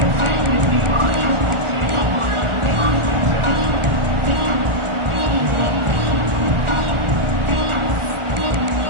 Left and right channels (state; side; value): late; left; 1.4 ms